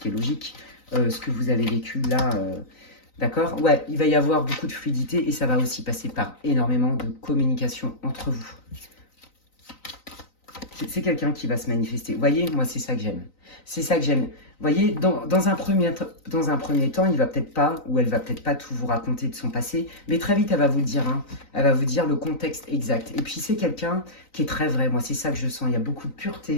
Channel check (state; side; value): late; right; 3.9 ms